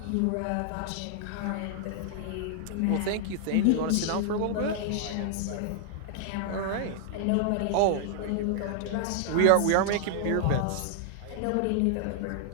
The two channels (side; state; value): both; different; correlation 0.00